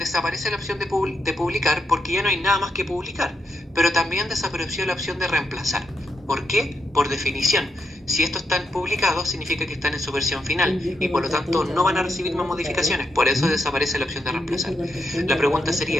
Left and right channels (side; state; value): both; normal; correlation 0.82